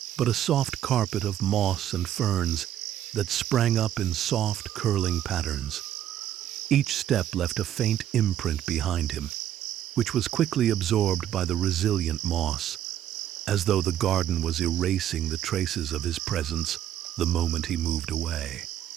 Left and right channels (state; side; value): quieter; left; 11.3 dB